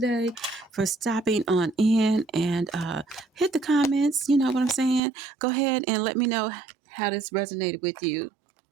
for stopping on in and hit the comments. You know what I'm saying? Go ahead and let me know how this resonated with you.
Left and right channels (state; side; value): drops out; left; at 5.0 s